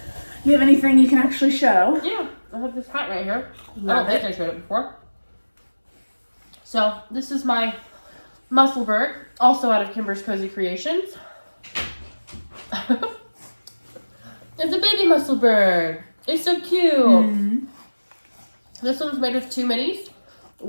You have anything you can actually show? Yeah, I have this hat right here. I Love don't think I showed it before. So this is my Musselburgh, also out of Kimber's Cozy Creations. It's a baby Musselburgh. It's so cute. Mm-hmm. This one's made with 2 minis.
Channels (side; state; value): both; inverted; correlation -1.00